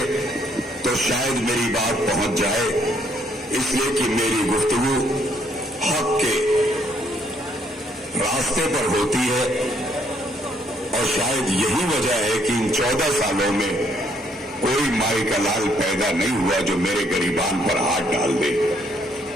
तो शायद मेरी बात पहुंच जाए, इसलिए कि मेरी गुफ्तगू हक के रास्ते पर होती है और शायद यही वजह है कि इन 14 सालों में कोई माई का लाल पैदा नहीं हुआ जो मेरे गरीबान पर हाथ डाल दे।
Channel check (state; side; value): normal; both; correlation 0.68